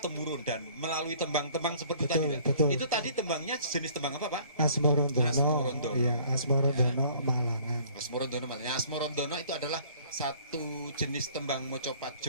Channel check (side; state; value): both; inverted; correlation -0.55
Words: dan melalui tembang-tembang seperti Betul, tadi. betul. Itu tadi tembangnya jenis tembang apa Pak? Asmorondono. Asmorondono. Iya, Asmorondono Malangan. Asmorondono Malangan. Asmorondono itu adalah satu jenis tembang mocopat